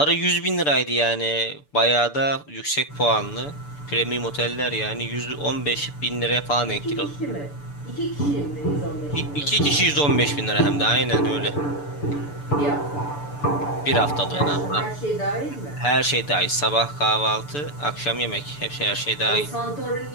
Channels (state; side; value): late; right; 6.9 ms